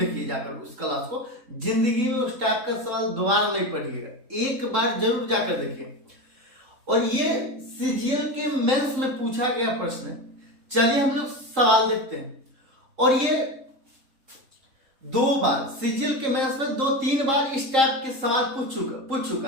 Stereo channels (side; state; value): left; late; 3.7 ms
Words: जाकर उस क्लास को। जिंदगी में उस टाइप का सवाल दोबारा नहीं पढ़िएगा, एक बार जरूर जाकर देखिए। और ये CGL के मेंस में पूछा गया प्रश्न है। चलिए हम लोग सवाल देखते हैं। और ये 2 बार CGL के मेंस में 2-3 बार इस टाइप के सवाल पूछ